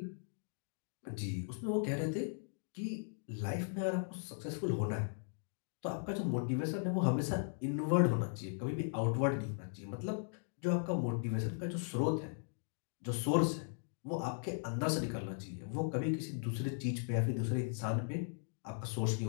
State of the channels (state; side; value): silent; right; digital silence